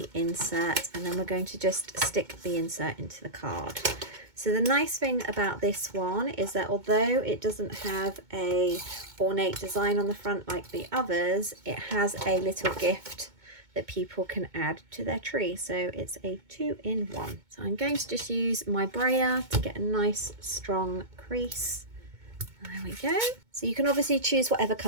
insert. And then we're going to just stick the insert into the card. So the nice thing about this one is that although it doesn't have a ornate design on the front like the others, it has a little gift that people can add to their tree. So it's a 2-in-1. So I'm going to just use my brayer to get a nice strong crease. There we go. So you can obviously choose whatever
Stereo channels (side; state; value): left; late; 2.2 ms